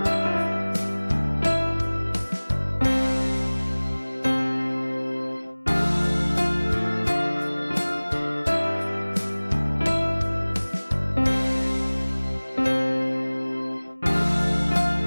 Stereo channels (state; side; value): inverted; both; correlation -1.00